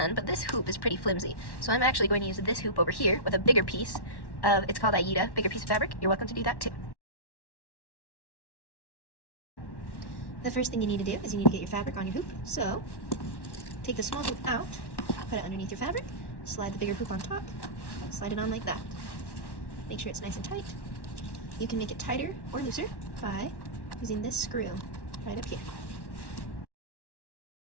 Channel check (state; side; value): late; right; 1.1 ms